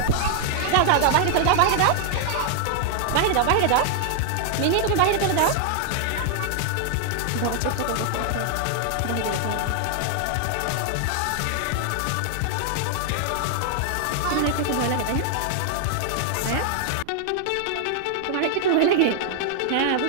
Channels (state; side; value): different; both; correlation 0.00